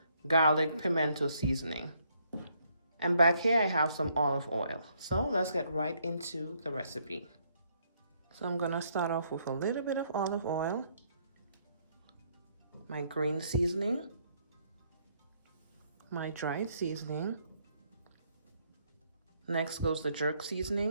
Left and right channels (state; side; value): inverted; both; correlation -0.70